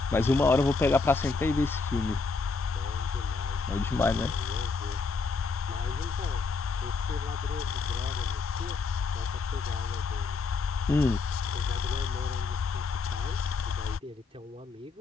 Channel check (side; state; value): right; quieter; 4.3 dB